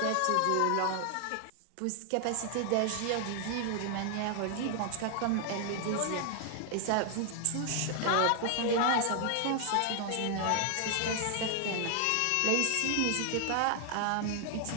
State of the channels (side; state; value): both; different; correlation 0.00